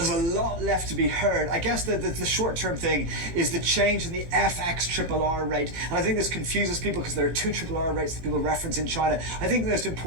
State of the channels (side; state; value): left; late; 18 ms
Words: a lot left to be heard. I guess the short-term thing is the change in the FX RRR rate. And I think this confuses people because there are two RRR rates that people reference in China. I think most